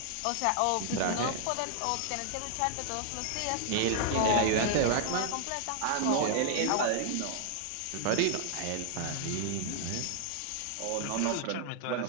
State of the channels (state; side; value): different; both; correlation 0.00